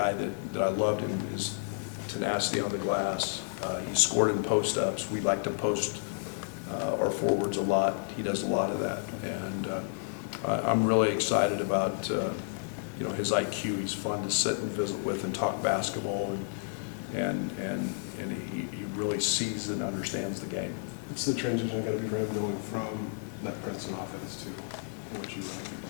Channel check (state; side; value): silent; right; digital silence